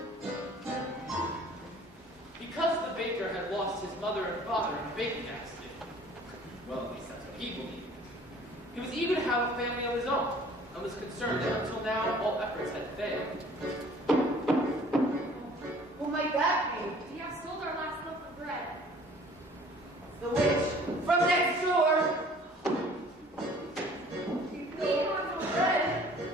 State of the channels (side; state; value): both; normal; correlation 0.52